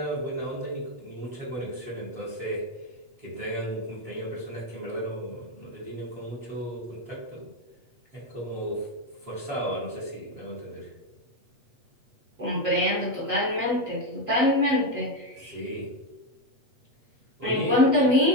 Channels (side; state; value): left; late; 8.2 ms